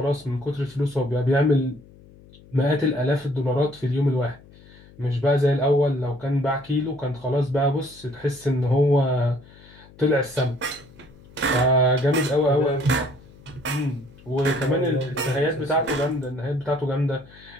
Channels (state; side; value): noise; left; hum, 23 dB below the sound